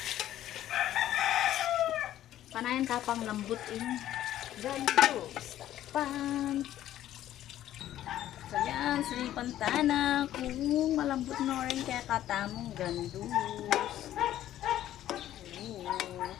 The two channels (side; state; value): right; quieter; 12.6 dB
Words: Panayan tapang lambot ini. Gandos. Pan. So yan, silipan tana. Kung malambot na rin kaya katamong gandos.